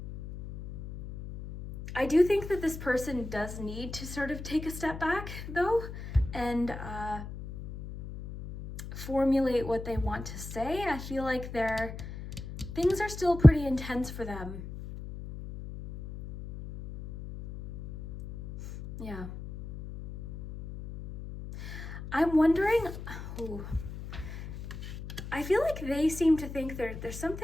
I do think that this person does need to sort of take a step back, though, and formulate what they want to say. I feel like things are still pretty intense for them. Yeah. I'm wondering, I feel like they seem to think there's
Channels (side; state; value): left; noise; hum, 10 dB below the sound